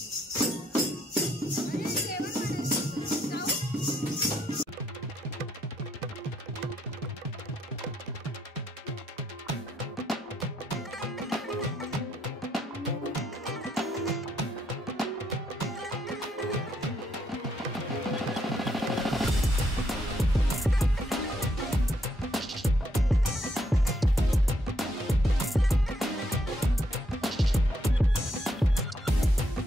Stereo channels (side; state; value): both; normal; correlation 0.74